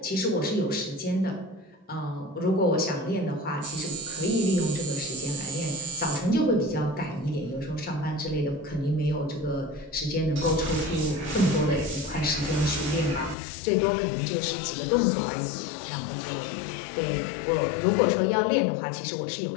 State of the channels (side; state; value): right; drops out; at 13.4 s